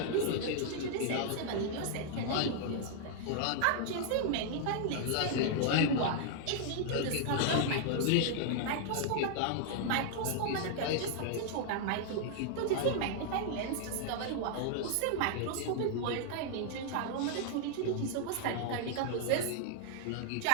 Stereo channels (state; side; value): different; both; correlation -0.01